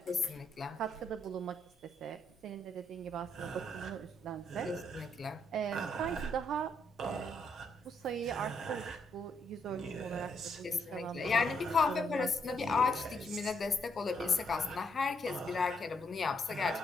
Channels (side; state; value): both; normal; correlation 0.75